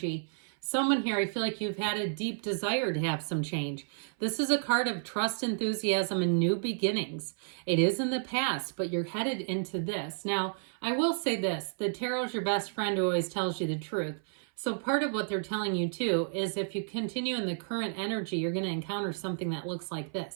someone here, I feel like you've had a deep desire to have some change. This is a card of trust, enthusiasm, and new beginnings. It is in the past, but you're headed into this. Now, I will say this, the tarot is your best friend who always tells you the truth. So part of what they're telling you too is if you continue in the current energy, you're going to encounter something that looks like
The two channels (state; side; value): silent; left; 57 dB below the other